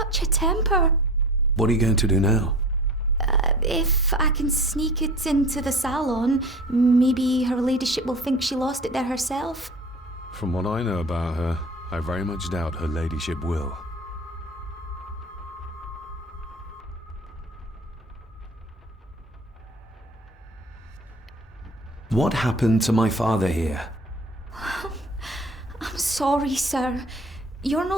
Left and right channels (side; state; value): both; normal; correlation 0.41